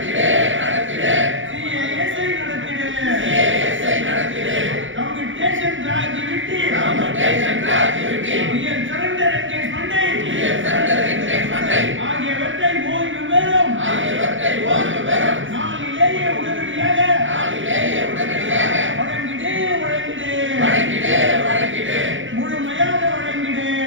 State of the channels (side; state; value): left; late; 0.56 ms